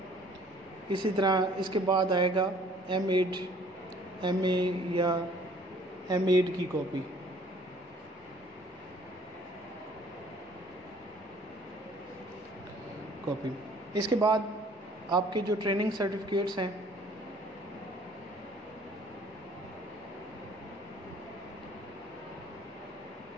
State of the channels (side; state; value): both; normal; correlation 0.56